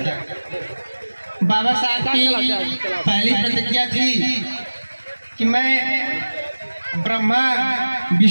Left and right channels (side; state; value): both; inverted; correlation -1.00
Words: बाबा साहब की पहली प्रतिज्ञा थी कि मैं ब्रह्मा,